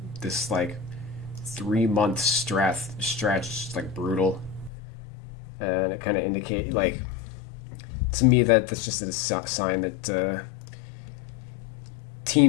this like 3-month stretch is like brutal. And it kind of indicate like, to me, that's just a sign that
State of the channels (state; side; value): drops out; right; at 4.7 s